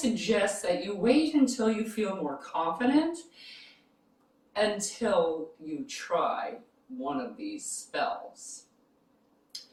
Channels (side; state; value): both; identical; correlation 1.00